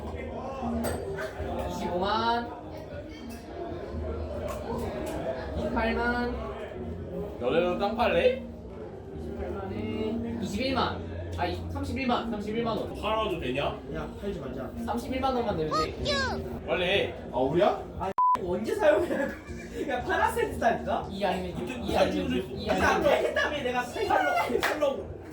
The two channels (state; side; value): identical; both; correlation 1.00